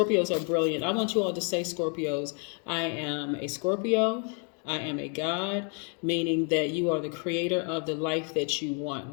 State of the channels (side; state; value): right; quieter; 39.1 dB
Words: are brilliant. I want you all to say, Scorpios, I am a Scorpio. I am a God, meaning that you are the creator of the life that you want,